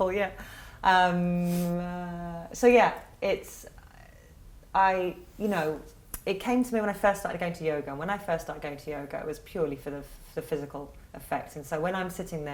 So it's... you know, it came to me when I first started going to yoga. And when I first started going to yoga, it was purely for the physical effect. And so when I'm sitting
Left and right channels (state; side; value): identical; both; correlation 1.00